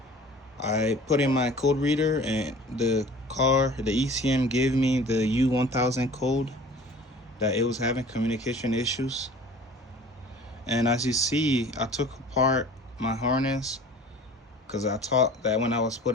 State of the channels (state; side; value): normal; both; correlation 0.45